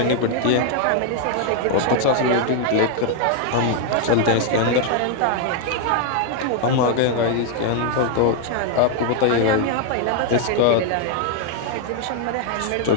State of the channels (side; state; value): both; different; correlation 0.00